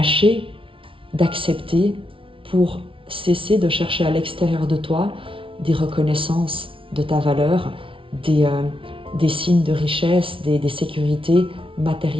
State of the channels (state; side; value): late; left; 0.25 ms